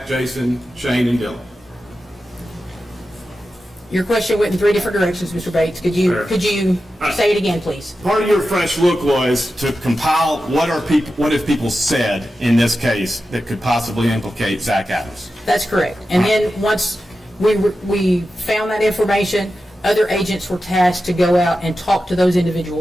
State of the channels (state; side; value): normal; both; correlation 0.92